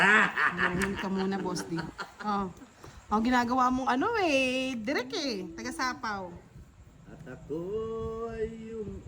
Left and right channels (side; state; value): both; identical; correlation 1.00